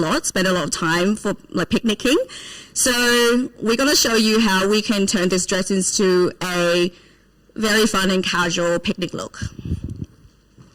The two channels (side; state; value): both; identical; correlation 1.00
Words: lot, spend a lot of time for picnicking. So we're going to show you how we can turn this dress into a very fun and casual picnic look.